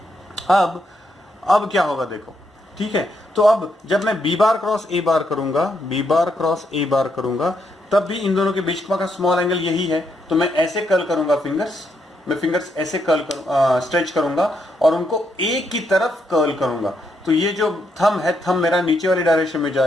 अब क्या होगा देखो। ठीक है, तो अब जब मैं बी बार क्रॉस ए बार करूंगा, बी बार क्रॉस ए बार करूंगा, तब भी इन दोनों के बीच का स्मॉल एंगल यही है। तो मैं ऐसे कर्ल करूंगा फिंगर्स, मैं फिंगर्स ऐसे कर्ल स्ट्रेच करूंगा और उनको एक की तरफ कर्ल करूंगा। तो ये जो थंब है, थंब मेरा नीचे वाली डायरेक्शन में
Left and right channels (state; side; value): normal; both; correlation 0.78